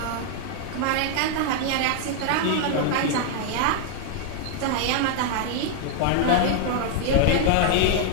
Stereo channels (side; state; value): both; different; correlation 0.00